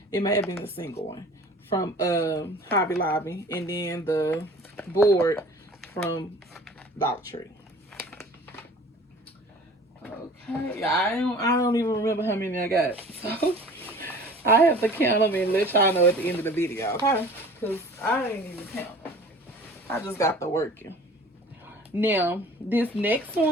It may have been a single one from Hobby Lobby, and then the board from Dollar Tree. Okay, I don't even remember how many I got, so I have to count them and let y'all know at the end of the video, okay? Because I ain't even count them. I just got the working. Now, this next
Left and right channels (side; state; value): both; normal; correlation 0.45